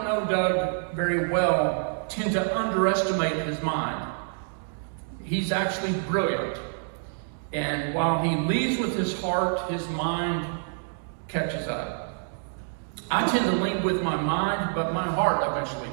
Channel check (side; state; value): left; silent; digital silence